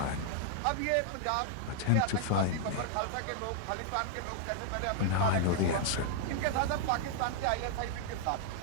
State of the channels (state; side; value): different; both; correlation -0.01